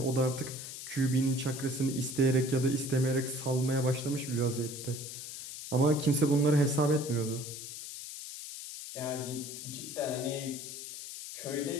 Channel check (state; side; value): noise; left; hiss, 9 dB below the sound